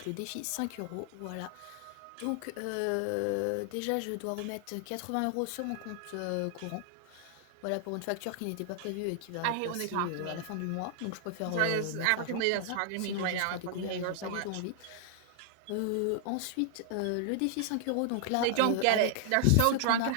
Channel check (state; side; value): different; both; correlation 0.00